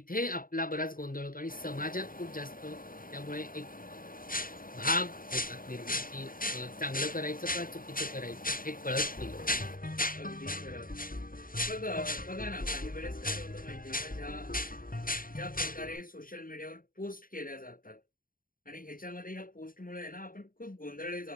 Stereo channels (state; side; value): late; right; 0.41 ms